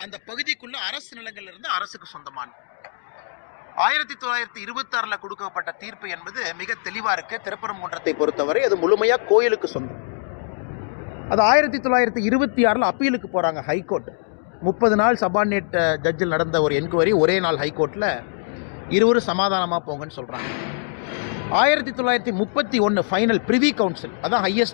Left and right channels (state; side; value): silent; right; digital silence